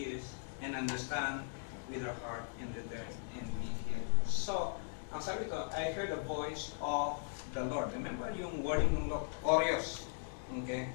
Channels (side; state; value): right; silent; digital silence